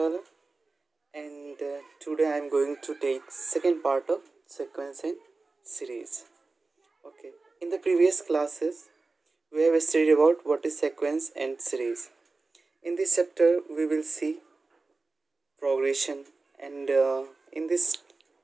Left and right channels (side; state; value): left; quieter; 3.7 dB